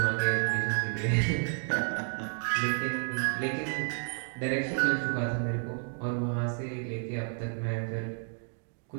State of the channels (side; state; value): left; silent; 57 dB below the other